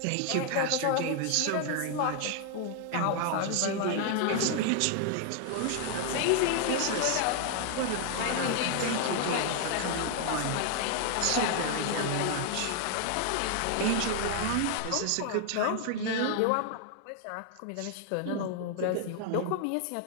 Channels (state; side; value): different; both; correlation 0.00